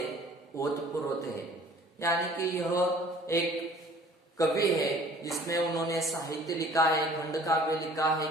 ओतप्रोत है। यानी कि यह एक कवि है जिसमें उन्होंने साहित्य लिखा है, खंड काव्य लिखा है,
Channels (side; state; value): both; normal; correlation 0.51